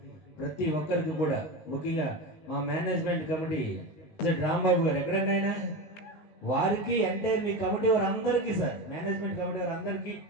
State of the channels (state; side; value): late; right; 19 ms